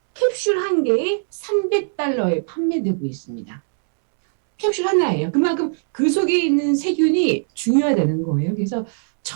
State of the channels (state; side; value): silent; left; 66 dB below the other